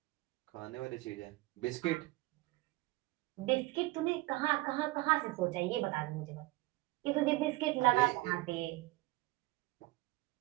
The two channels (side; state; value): left; quieter; 19.9 dB